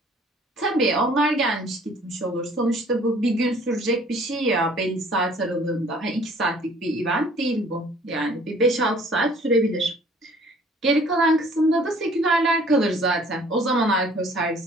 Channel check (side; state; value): both; normal; correlation 0.55